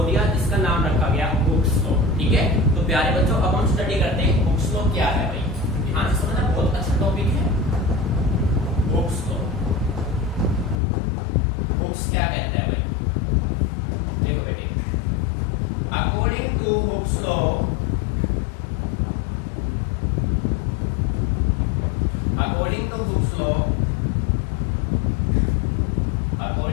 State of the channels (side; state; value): right; drops out; at 10.8 s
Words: दिया जिसका नाम रखा गया हुक्स लॉ. ठीक है. तो प्यारे बच्चों अब हम स्टडी करते हैं हुक्स लॉ क्या है. भाई ध्यान से समझना, बहुत अच्छा टॉपिक है हुक्स लॉ. हुक्स क्या कहता है भाई, देखो बेटे, अकॉर्डिंग टू हुक्स लॉ